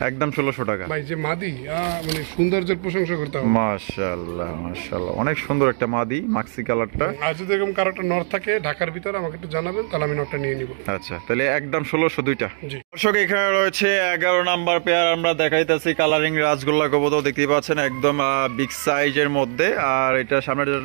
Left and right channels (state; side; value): silent; left; digital silence